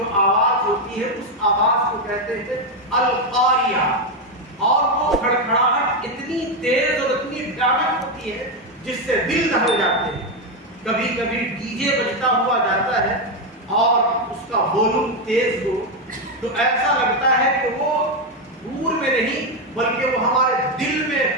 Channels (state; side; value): normal; both; correlation 0.06